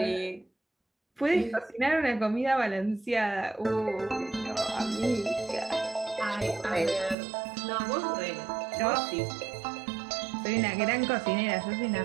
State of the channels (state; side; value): drops out; left; at 7.2 s